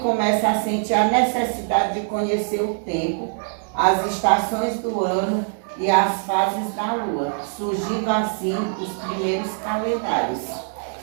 a sentir a necessidade de conhecer o tempo, as estações do ano e as fases da lua, surgindo assim os primeiros calendários.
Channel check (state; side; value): silent; left; digital silence